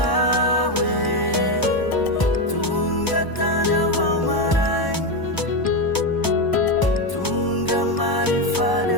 hoe tonga tany avao marainy tonga marifaly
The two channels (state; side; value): late; right; 1.0 ms